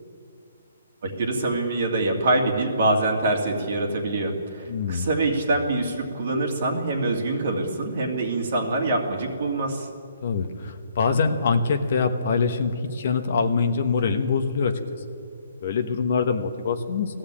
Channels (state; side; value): inverted; both; correlation -0.64